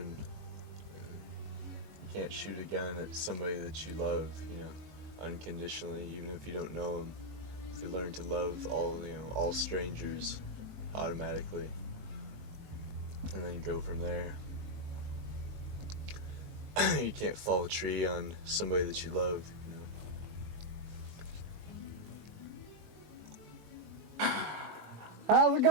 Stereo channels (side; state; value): left; late; 21 ms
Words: You can't shoot a gun at somebody that you love, you know, unconditionally, even if you don't know them. If you learn to love all strangers automatically, and then go from there. You can't fall a tree on somebody that you love, you know. How's it